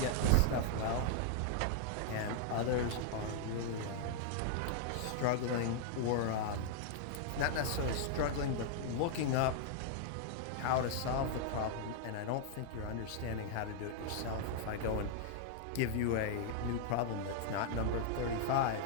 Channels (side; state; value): both; different; correlation -0.01